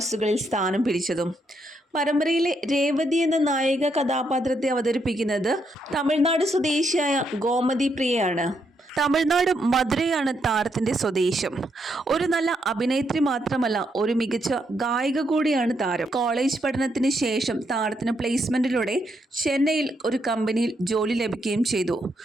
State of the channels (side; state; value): both; normal; correlation 0.78